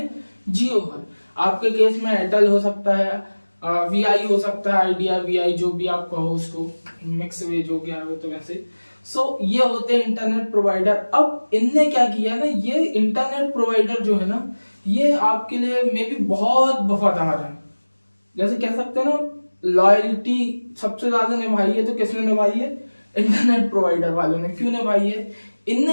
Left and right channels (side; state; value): both; inverted; correlation -1.00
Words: जियो है। आपके केस में एयरटेल हो सकता है, वीआई हो सकता है, आइडिया, वीआई, जो भी आप कहो उसको, मिक्स वेज हो गया है तो वैसे। सो ये होते हैं इंटरनेट प्रोवाइडर। अब इनने क्या किया ना, ये इंटरनेट प्रोवाइडर जो है ना, ये आपके लिए मे भी बहुत वफादार है, जैसे कह सकते हैं ना, लॉयल्टी सबसे ज्यादा निभाई है तो किसने निभाई है, इंटरनेट प्रोवाइडर वालों ने। क्यों निभाई है,